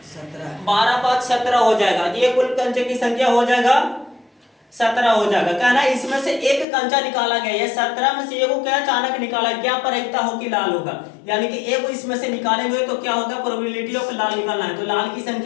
17, 12 5 17 हो जाएगा। ये कुल कंचे की संख्या हो जाएगा 17 हो जाएगा। कहना इसमें से एक कंचा निकाला गया, ये 17 में से एगो क्या अचानक निकाला, क्या प्रायिकता हो कि लाल होगा, यानी कि एगो इसमें से निकालेंगे तो क्या होगा? प्रोबेबिलिटी ऑफ लाल निकालना है। तो लाल की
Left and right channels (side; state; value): right; drops out; at 6.7 s